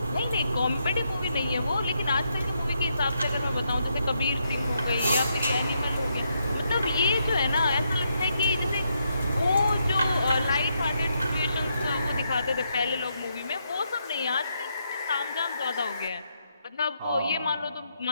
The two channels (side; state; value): both; inverted; correlation -0.79